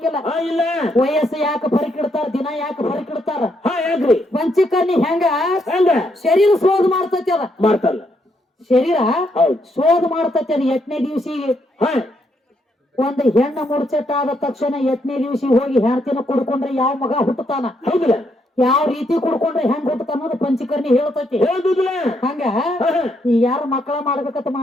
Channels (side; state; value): both; normal; correlation 0.76